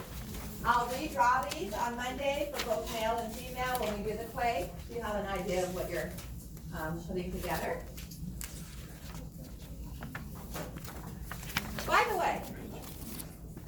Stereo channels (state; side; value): identical; both; correlation 1.00